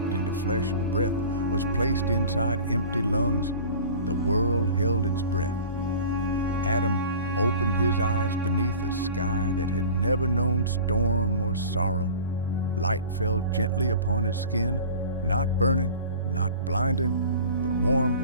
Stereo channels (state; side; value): inverted; both; correlation -0.40